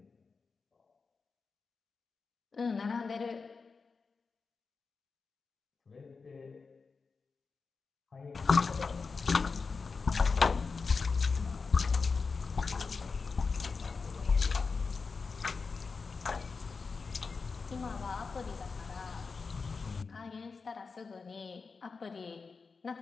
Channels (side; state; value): right; quieter; 4.7 dB